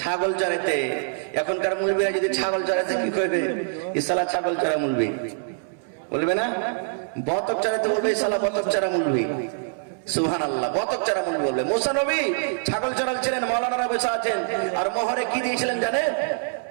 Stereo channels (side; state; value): left; silent; 62 dB below the other